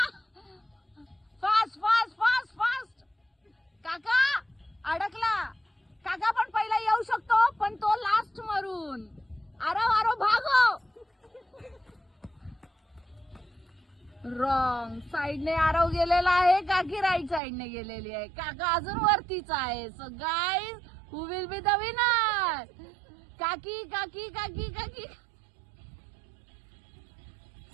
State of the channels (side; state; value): left; drops out; at 17.4 s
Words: फास्ट फास्ट फास्ट फास्ट. काका अडकला. काका पण पहिला येऊ शकतो पण तो लास्ट मरून. आरो आरो भागो. रॉंग साइडने आरव गेलेला आहे. काकी राईट साइडने गेलेली आहे. काका अजून वरतीच आहे. So guys who will be the winner? काकी काकी काकी काकी